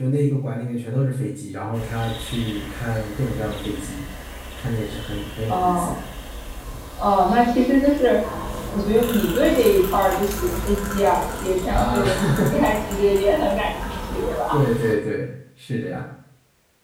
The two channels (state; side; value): identical; both; correlation 1.00